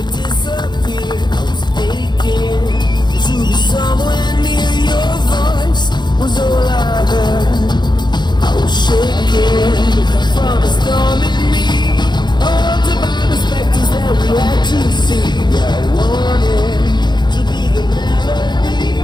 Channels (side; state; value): right; late; 0.21 ms